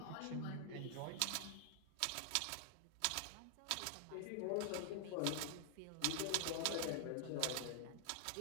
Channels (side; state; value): both; different; correlation 0.00